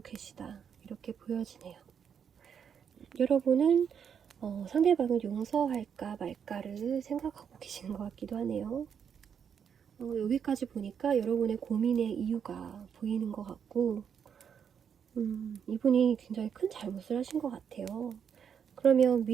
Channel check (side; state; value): left; quieter; 7.6 dB